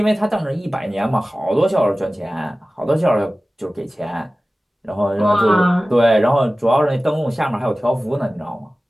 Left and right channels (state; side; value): normal; both; correlation 0.96